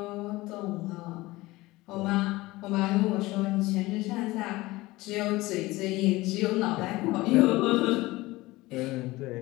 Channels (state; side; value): quieter; right; 19.8 dB